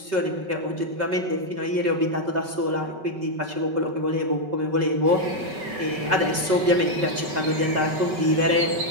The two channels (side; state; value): left; late; 5.3 ms